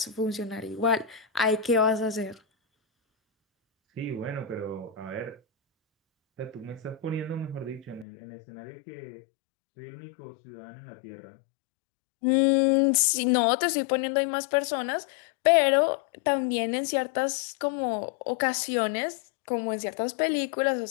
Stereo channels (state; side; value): drops out; right; at 8.1 s